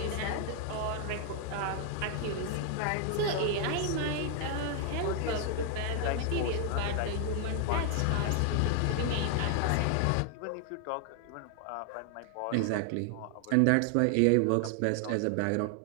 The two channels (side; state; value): both; different; correlation 0.00